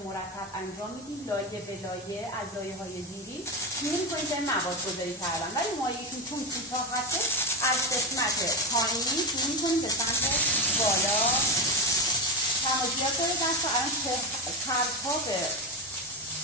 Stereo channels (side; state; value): both; normal; correlation 0.15